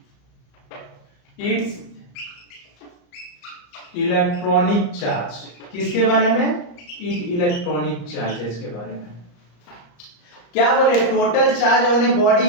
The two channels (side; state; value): right; late; 34 ms